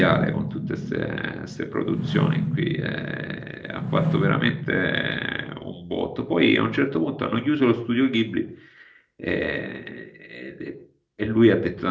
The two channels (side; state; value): both; identical; correlation 1.00